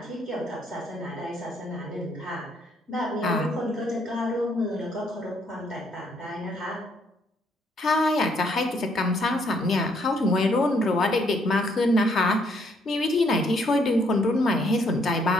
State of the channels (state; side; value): normal; both; correlation 0.69